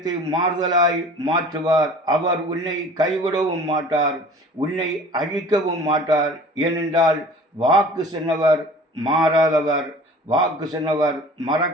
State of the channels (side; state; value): both; normal; correlation 0.45